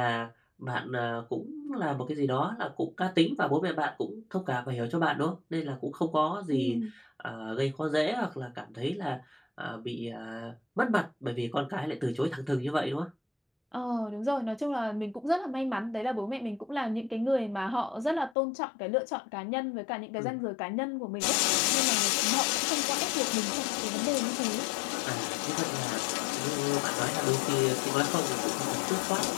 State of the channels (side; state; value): right; drops out; at 18.4 s